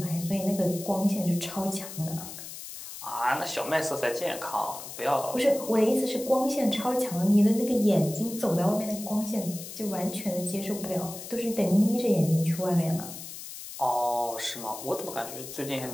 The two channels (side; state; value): left; noise; hiss, 11 dB below the sound